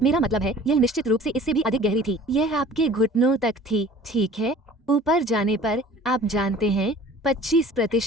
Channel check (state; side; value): normal; both; correlation 0.47